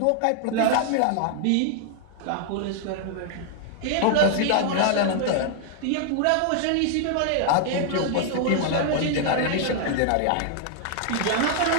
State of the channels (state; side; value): different; both; correlation 0.00